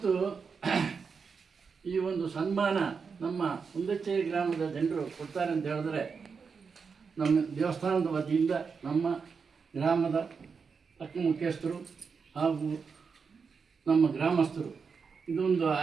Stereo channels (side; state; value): left; quieter; 5.5 dB